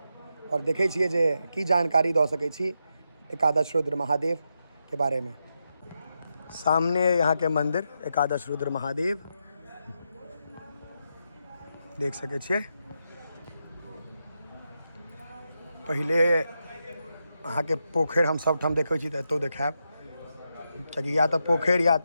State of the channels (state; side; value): inverted; both; correlation -0.85